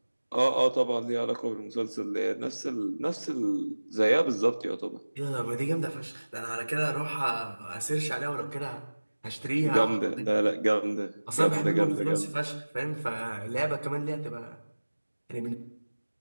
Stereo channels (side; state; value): both; inverted; correlation -1.00